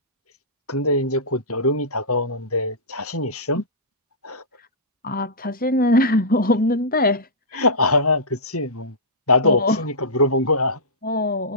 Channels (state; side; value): normal; both; correlation -0.16